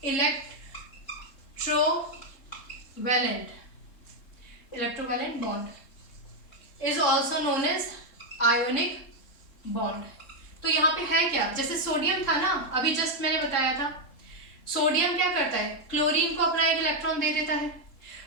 electrovalent bond is also known as ionic bond. तो यहाँ पे है क्या, जैसे सोडियम था ना, अभी जस्ट मैंने बताया था, सोडियम क्या करता है, क्लोरीन को अपना एक इलेक्ट्रॉन दे देता है।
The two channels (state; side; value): late; right; 3.7 ms